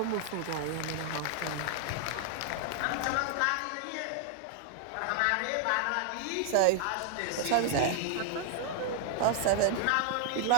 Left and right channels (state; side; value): different; both; correlation 0.00